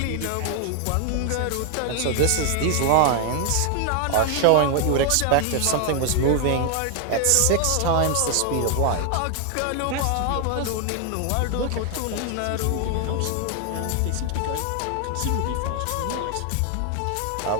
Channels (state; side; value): different; both; correlation 0.00